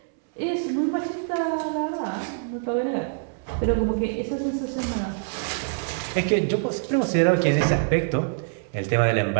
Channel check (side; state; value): left; silent; 62 dB below the other